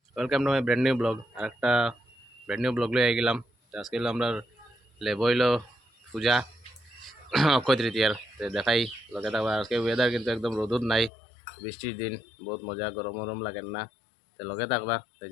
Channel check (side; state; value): right; drops out; at 11.1 s